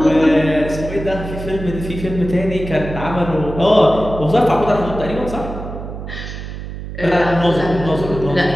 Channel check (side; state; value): right; noise; hum, 9 dB below the sound